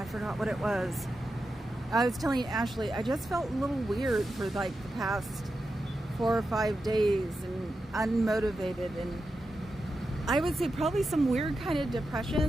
forgot what it was. I was telling Ashley, I just felt a little weird for like the past 4 or 5 days, and unmotivated, and I would say probably some weird kind of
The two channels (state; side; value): normal; both; correlation 0.89